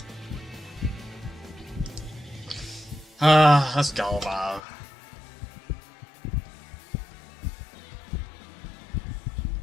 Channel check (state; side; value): drops out; right; at 4.6 s